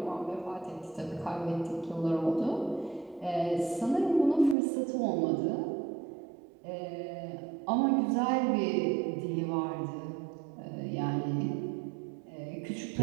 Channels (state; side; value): drops out; left; at 4.5 s